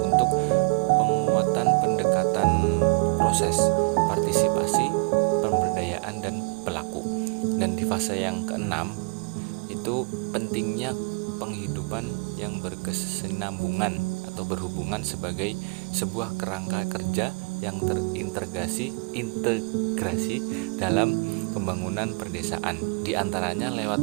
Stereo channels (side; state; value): left; quieter; 33.7 dB